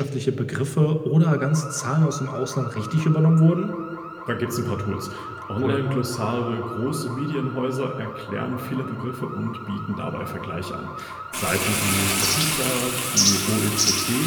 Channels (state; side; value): identical; both; correlation 1.00